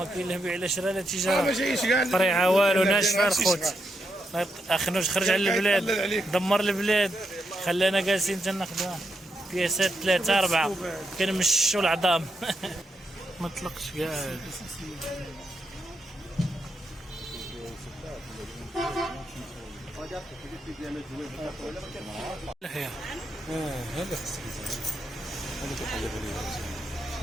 كاين له بيع لا شرا لا ما تجاره، جايش كاع طريعه والو، لا ناشفه شي الخوت. صغار. اخنوش خرج على يطلل البلاد، عليك. دمر البلاد، خلانا جالسين تناخذوا بياسات 3 4 كنمشوا العظام. ما طلقش كاع. لحيه هذا خصك هذا كيقلب عليه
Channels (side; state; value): both; normal; correlation 0.82